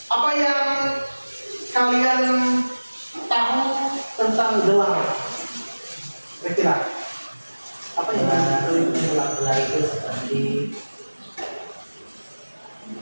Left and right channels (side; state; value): both; inverted; correlation -1.00